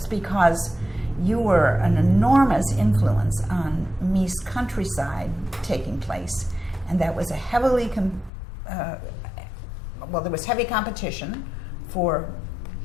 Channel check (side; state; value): right; drops out; at 8.3 s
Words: because you were an enormous influence on Meese countryside taking place, and that was a heavily there was heavy competition for